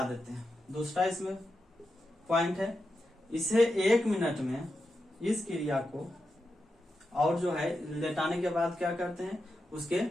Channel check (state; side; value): normal; both; correlation 0.88